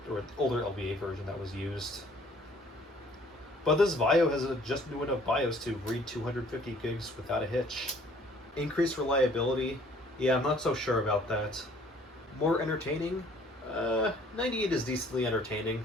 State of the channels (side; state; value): both; normal; correlation 0.57